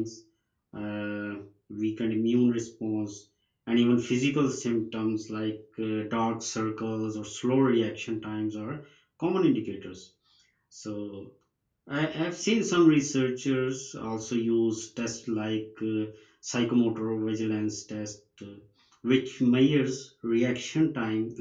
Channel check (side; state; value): both; identical; correlation 1.00